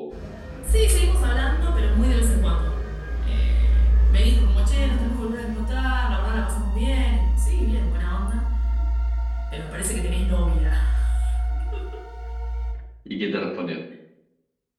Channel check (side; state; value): both; identical; correlation 1.00